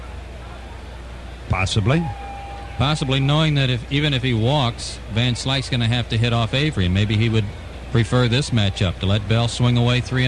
Possibly. Possibly, knowing that even if he walks, Van Slyke's going to have to hit off Avery, and maybe he would prefer this matchup to let Bell swing away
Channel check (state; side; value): identical; both; correlation 1.00